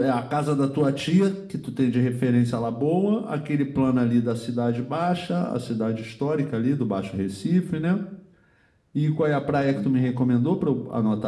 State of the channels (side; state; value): both; identical; correlation 1.00